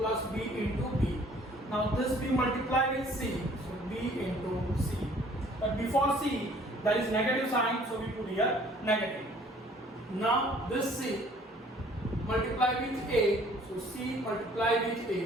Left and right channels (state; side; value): normal; both; correlation 0.56